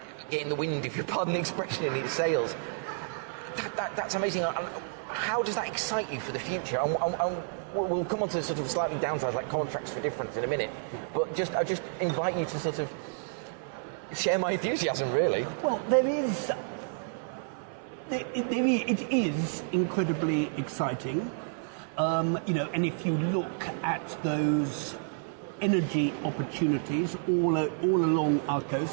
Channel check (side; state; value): left; silent; 58 dB below the other